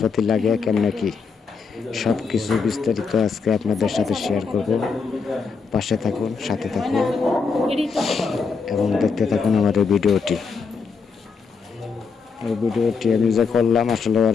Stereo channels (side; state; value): right; quieter; 5.2 dB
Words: লাগে, কেমন কি সব কিছু বিস্তারিত আজকে আপনাদের সাথে শেয়ার করব। পাশে থাকুন, সাথে থাকুন এবং দেখতে থাকুন আমার এই ভিডিওটি। এই ভিডিওটি আমি যে করলাম আসলে